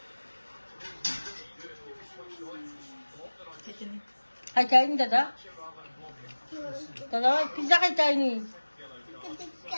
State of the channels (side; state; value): both; inverted; correlation -1.00